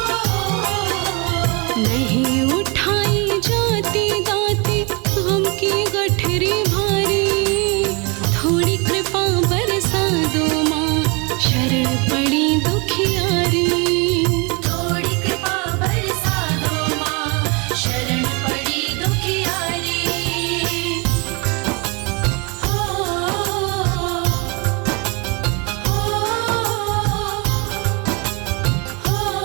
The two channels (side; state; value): left; quieter; 30.1 dB